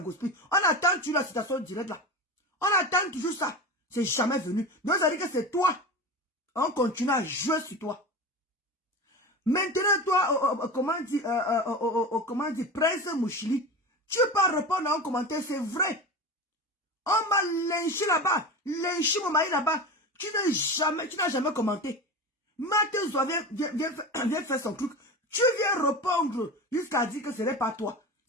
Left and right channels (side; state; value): both; normal; correlation 0.27